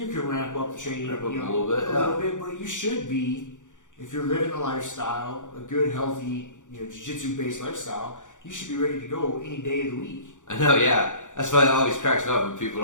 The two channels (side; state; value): right; late; 0.86 ms